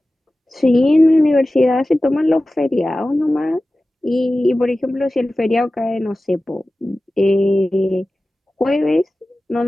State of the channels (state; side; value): normal; both; correlation 0.96